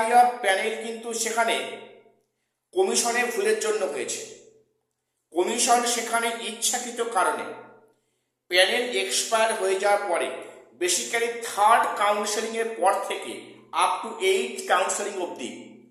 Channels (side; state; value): both; identical; correlation 1.00